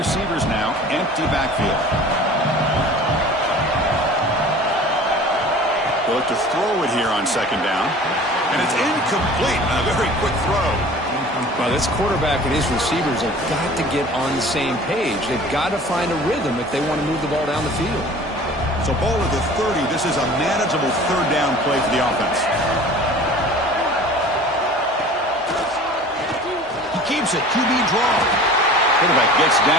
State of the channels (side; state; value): both; normal; correlation 0.44